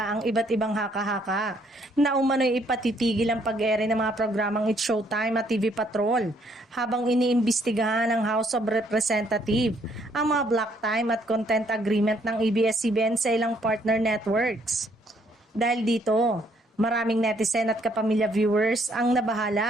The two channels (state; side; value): normal; both; correlation 0.68